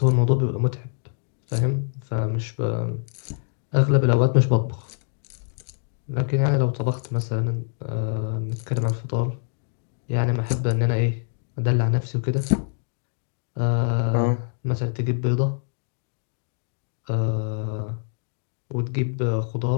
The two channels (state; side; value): silent; right; digital silence